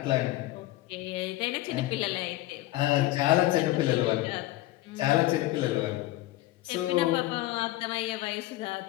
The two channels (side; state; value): right; quieter; 17.0 dB